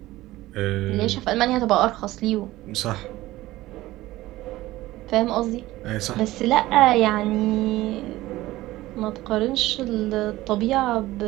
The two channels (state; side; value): quieter; left; 17.1 dB